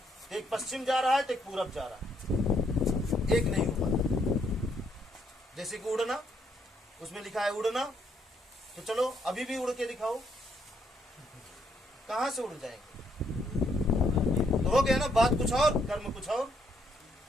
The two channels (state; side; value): normal; both; correlation 0.72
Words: एक पश्चिम जा रहा है तो एक पूरब जा रहा है, एक नहीं हुआ। जैसे कि उड़ना, उसमें लिखा है उड़ना, तो चलो अभी भी उड़ के दिखाओ, कहां से उड़ जाएंगे? तो हो गया ना, बात कुछ और कर्म कुछ